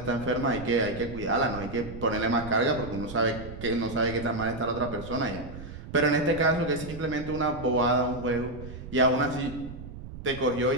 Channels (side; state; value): right; noise; rumble, 12 dB below the sound